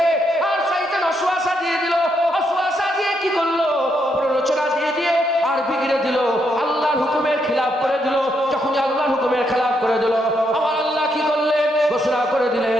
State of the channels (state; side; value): normal; both; correlation 0.77